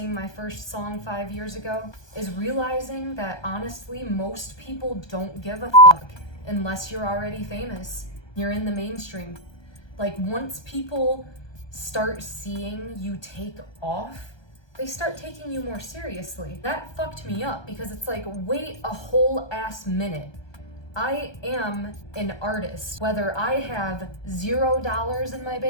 my first song 5 years ago is realizing that honestly, most people don't give a fuck unless you're already famous. You're in the mainstream. Like, once people start seeing you take off, they start taking you more seriously. That fucked me up because it's like, wait a whole ass minute. I am an artist, whether I have $0 in my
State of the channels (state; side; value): late; right; 1.2 ms